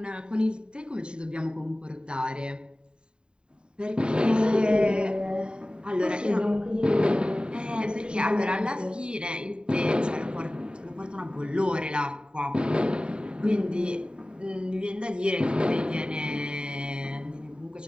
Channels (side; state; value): left; late; 0.050 ms